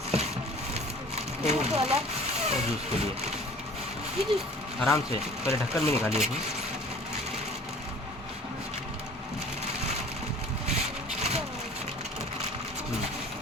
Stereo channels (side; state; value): both; normal; correlation 0.47